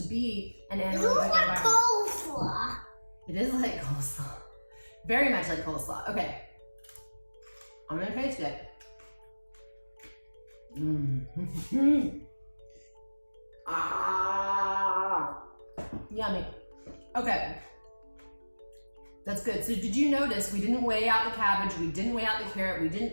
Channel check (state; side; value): inverted; both; correlation -1.00